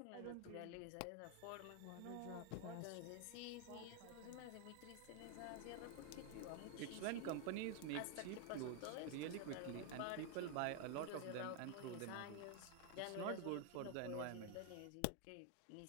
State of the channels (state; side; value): different; both; correlation 0.00